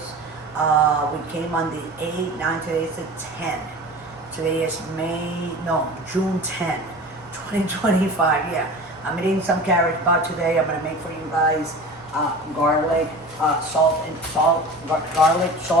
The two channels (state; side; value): normal; both; correlation 0.36